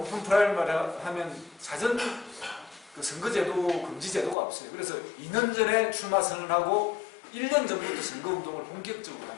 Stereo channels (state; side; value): drops out; right; at 4.4 s